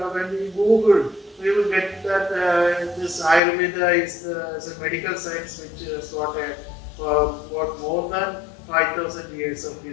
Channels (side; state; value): right; drops out; at 3.4 s